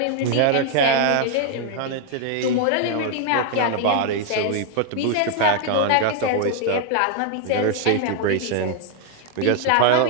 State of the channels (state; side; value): different; both; correlation 0.00